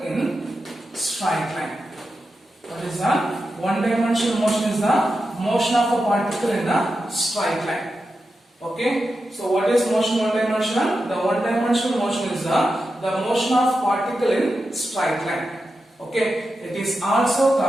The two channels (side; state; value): both; normal; correlation 0.90